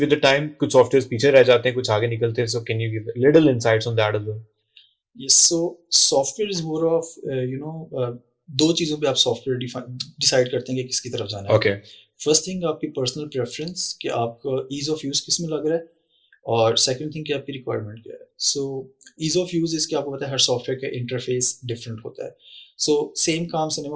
with the time कुछ softwares पीछे रह जाते हैं, कुछ आगे निकलते हैं. So can you give little insights on that as well? Yes. So software is more of दो चीज़ों पे आप सॉफ्टवेयर डिसाइड करते हैं कि किसकी तरफ जाना है. Okay. फर्स्ट थिंग आपकी पर्सनल प्रेफरेंस कि आपका ईज ऑफ यूज़ किस में लग रहा है, और सेकंड थिंग कि आपकी रिक्वायरमेंट क्या है. सो ईज ऑफ यूज़ इसके आपको पता है हर सॉफ्टवेयर का इंटरफेस डिफरेंट होता है. सो सेम काम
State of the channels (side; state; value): both; identical; correlation 1.00